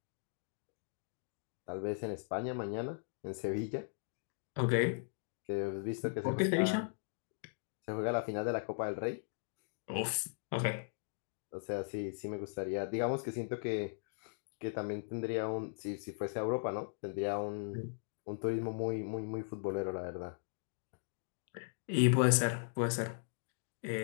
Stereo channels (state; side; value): silent; right; digital silence